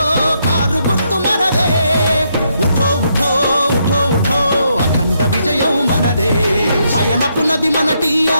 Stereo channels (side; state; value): both; inverted; correlation -0.77